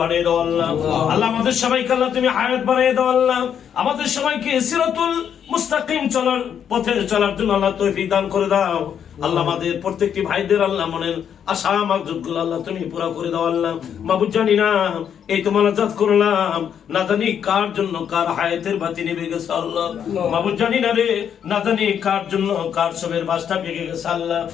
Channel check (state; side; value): quieter; right; 8.5 dB